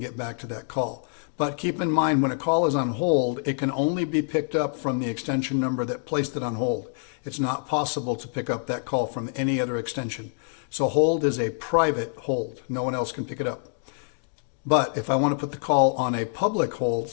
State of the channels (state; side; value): silent; right; digital silence